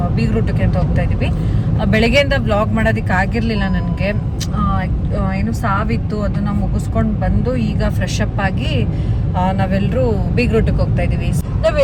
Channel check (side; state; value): both; identical; correlation 1.00